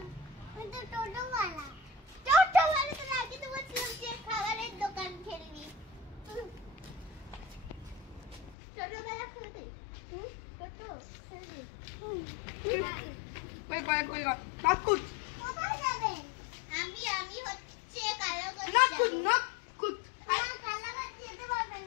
টোটোওয়ালা তো আগে তো বলছিলাম যে খাবারের দোকান খেলবি। টোটোওয়ালা খেলতে টোটো খেলবি। কই নাকুত কোথায় যাবে? আমি হচ্ছে কালাগঞ্জ নাকুত কালাগঞ্জ যেতে পারবে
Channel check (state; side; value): drops out; right; at 8.6 s